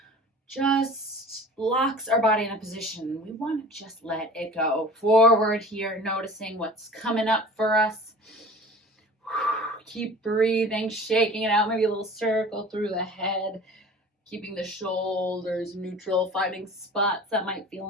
Just locks our body in a position. We want to just let it go. Forward here, noticing what's coming up for us. Keep breathing, shaking it out, maybe a little circle through the head, keeping the shoulders neutral, finding spots that might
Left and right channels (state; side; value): normal; both; correlation 0.42